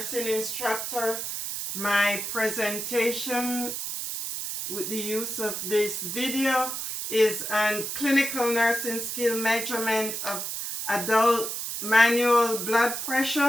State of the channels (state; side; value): noise; right; hiss, 4 dB below the sound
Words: instructor. My presentation with the use of this video is on clinical nursing skill measurement of adult manual blood